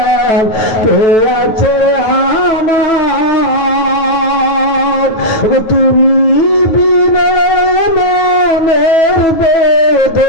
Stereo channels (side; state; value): right; late; 9.2 ms